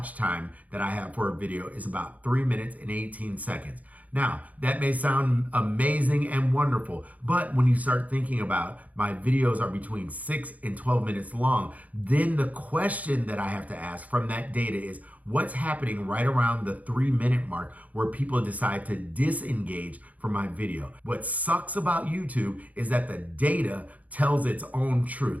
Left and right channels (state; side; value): late; left; 0.074 ms